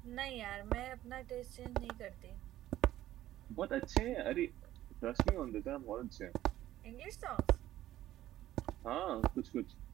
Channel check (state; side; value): quieter; left; 13.8 dB